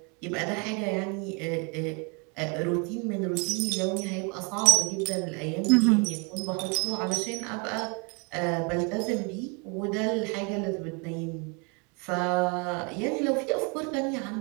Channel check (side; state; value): left; quieter; 33.5 dB